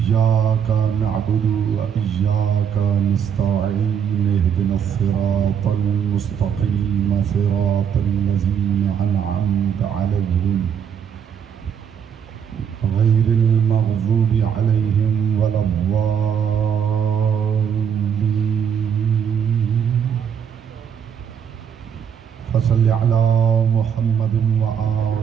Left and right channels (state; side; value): quieter; left; 7.9 dB